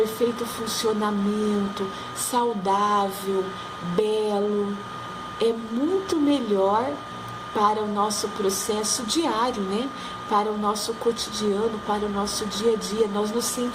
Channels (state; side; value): identical; both; correlation 1.00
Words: funcionamento, saudável, belo, é muito melhor para o nosso processo diário, Para o nosso cotidiano, para o nosso dia a dia. Nós nos